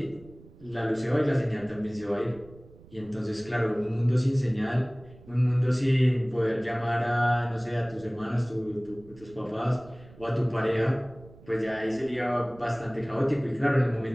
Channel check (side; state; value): right; noise; rumble, 22 dB below the sound